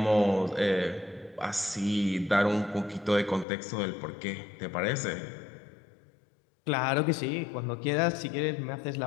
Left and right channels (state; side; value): drops out; right; at 3.5 s